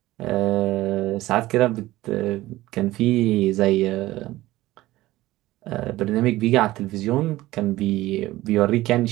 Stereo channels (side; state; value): left; quieter; 17.0 dB